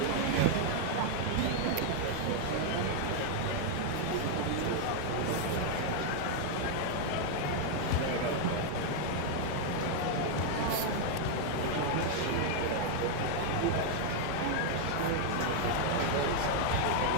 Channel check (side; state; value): both; different; correlation 0.00